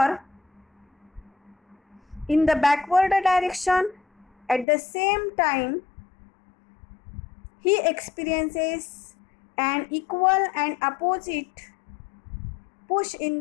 in the backward direction at the same time he experiences an equal and opposite push in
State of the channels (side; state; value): right; drops out; at 4.7 s